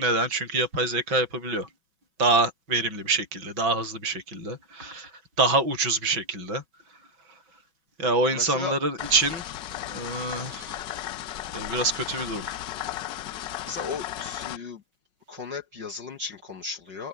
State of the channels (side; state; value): left; late; 5.4 ms